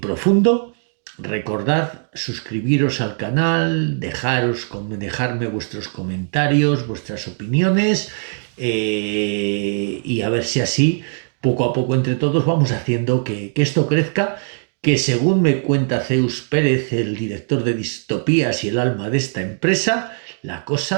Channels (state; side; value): silent; left; digital silence